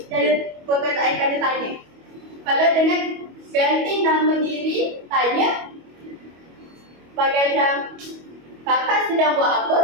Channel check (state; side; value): late; left; 25 ms